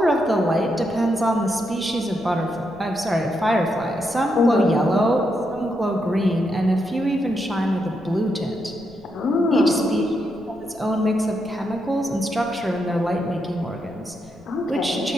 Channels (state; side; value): noise; left; rumble, 25 dB below the sound